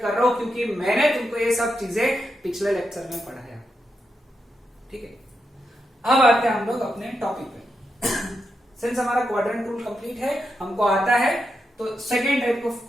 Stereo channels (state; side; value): normal; both; correlation 0.85